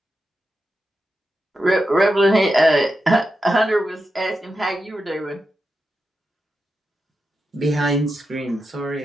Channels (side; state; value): both; normal; correlation 0.88